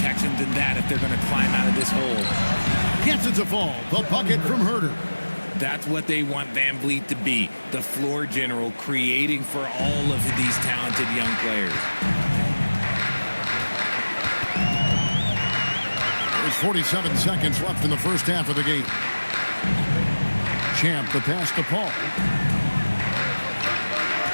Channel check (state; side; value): inverted; both; correlation -1.00